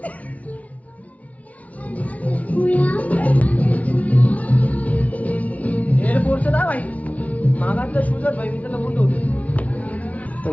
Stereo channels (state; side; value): late; right; 0.068 ms